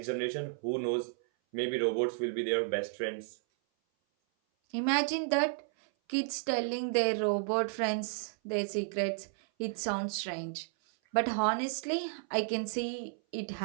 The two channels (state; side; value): silent; left; 56 dB below the other